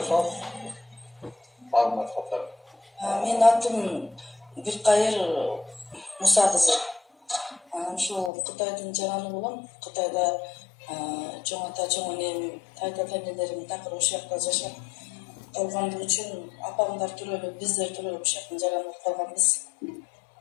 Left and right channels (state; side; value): drops out; right; at 8.3 s